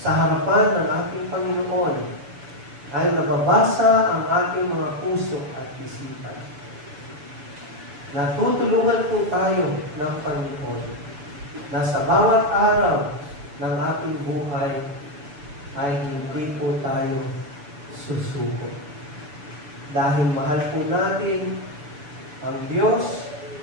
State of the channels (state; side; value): late; left; 6.9 ms